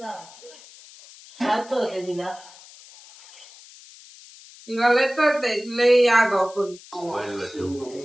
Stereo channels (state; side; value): noise; left; hiss, 21 dB below the sound